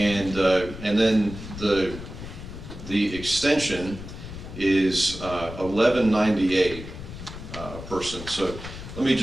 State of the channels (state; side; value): noise; left; rumble, 11 dB below the sound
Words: then the extension is $11.98 person. So let me